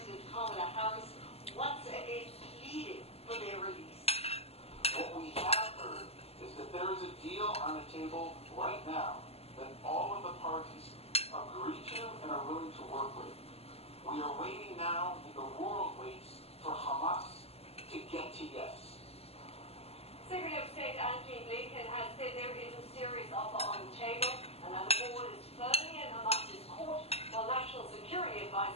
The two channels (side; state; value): right; late; 0.29 ms